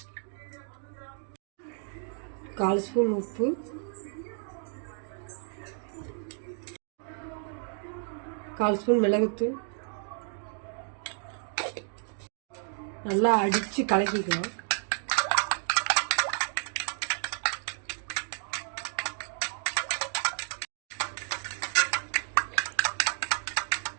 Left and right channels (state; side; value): silent; left; 57 dB below the other